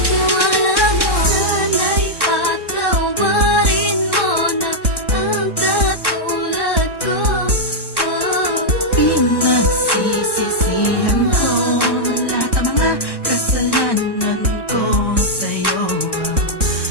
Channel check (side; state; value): right; late; 1.1 ms